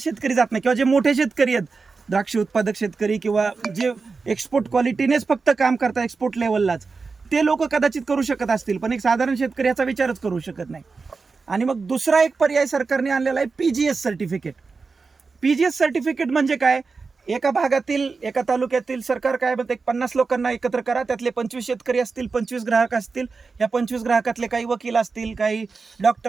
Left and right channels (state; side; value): quieter; left; 4.5 dB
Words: जात नाही, किंवा जे मोठे शेतकरी आहेत, द्राक्ष उत्पादक शेतकरी किंवा जे एक्सपोर्ट क्वालिटीनेच फक्त काम करतात एक्सपोर्ट लेवललाच, ते लोक कदाचित करू शकत असतील, पण एक साधारण शेतकरी याचा विचारच करू शकत नाही. आणि मग दुसरा एक पर्याय सरकारने आणलेला आहे PGS सर्टिफिकेट. PGS सर्टिफिकेट म्हणजे काय? एका भागातील, एका तालुक्यातील सरकार काय म्हणते, 50 लोकांना एकत्र करा, त्यातले 25 शेतकरी असतील, 25 ग्राहक असतील, या 25 ग्राहकातले काही वकील असतील, काही